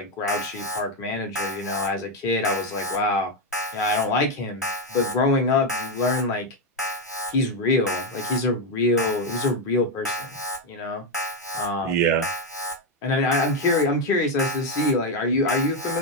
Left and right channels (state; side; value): normal; both; correlation 0.05